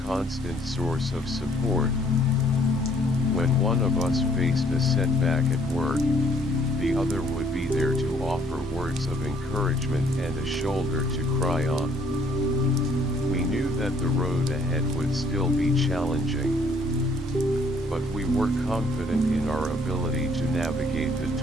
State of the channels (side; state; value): both; normal; correlation 0.63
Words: constant source of support. When one of us faced a setback at work, the other would be there to offer words of encouragement and a shoulder to cry on. We knew that the road ahead would still be challenging, but we were confident in our ability to navigate the